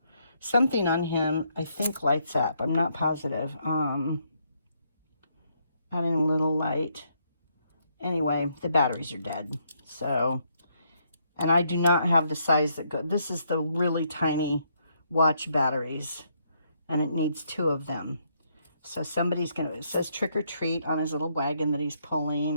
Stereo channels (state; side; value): inverted; both; correlation -0.74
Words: Something on him, I think, lights up. I'm not positive. Adding a little light. Anyway, the batteries are dead. So, and I do not have the size that go. This is the really tiny watch batteries, and it needs 2 of them. So somebody's gonna, it says trick or treat on his little wagon that he's